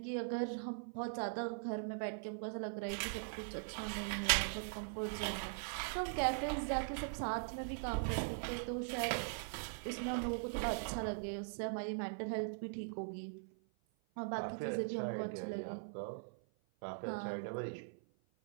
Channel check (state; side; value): silent; left; 50 dB below the other